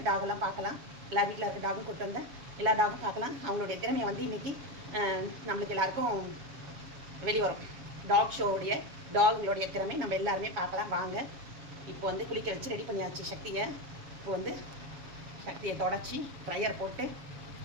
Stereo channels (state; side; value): late; left; 7.2 ms